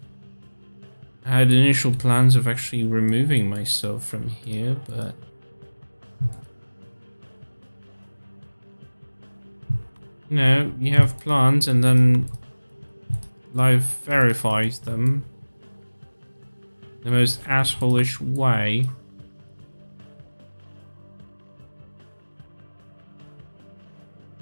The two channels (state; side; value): inverted; both; correlation -1.00